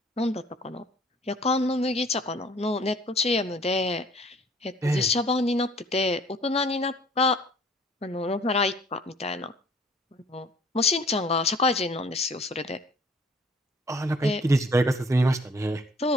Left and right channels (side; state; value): both; normal; correlation 0.54